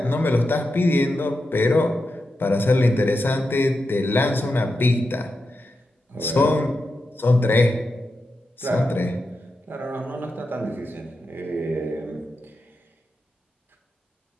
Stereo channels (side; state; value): both; normal; correlation 0.88